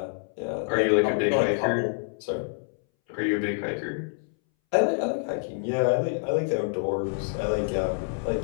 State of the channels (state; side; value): silent; right; 60 dB below the other